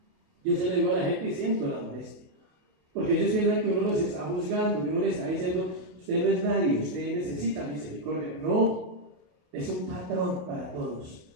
Yo se lo digo a la gente y siento la molestia, porque ellos piensan que uno los está juzgando, que uno le está diciendo: usted no es nadie, usted necesita misericordia. No, es un patrón para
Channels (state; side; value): late; left; 28 ms